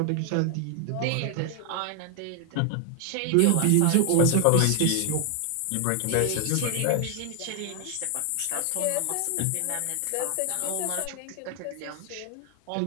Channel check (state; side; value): different; both; correlation 0.00